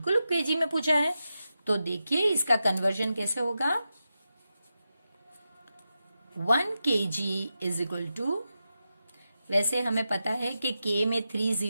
केजी में पूछा है। तो देखिए इसका कन्वर्जन कैसे होगा। 1 kg इज इक्वल टू, वैसे हमें पता है कि के में 3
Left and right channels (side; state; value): both; inverted; correlation -0.90